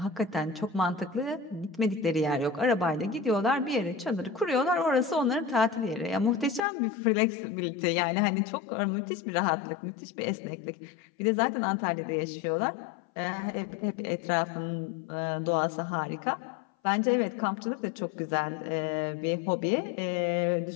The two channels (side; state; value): right; drops out; at 6.6 s